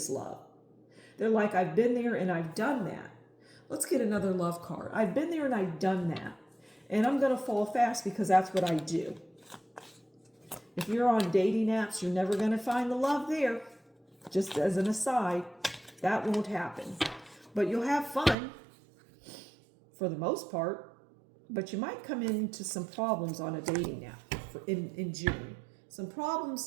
love. They're like, I've been there and I've done that. Let's get another love card. I've been there and I've done that. And I'm going to fall fast because that's what I do. If you're on dating apps, you're never going to find the love there. Just as an aside, that won't happen. But you'll have fun for the most part. But you might come into some problems on a dating app in June. Some problems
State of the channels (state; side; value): drops out; left; at 18.4 s